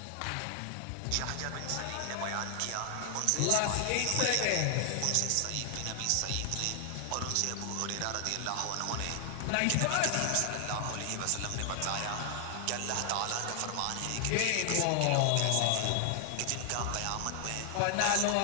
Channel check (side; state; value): both; different; correlation 0.00